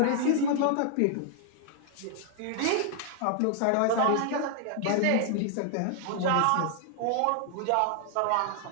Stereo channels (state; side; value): different; both; correlation 0.00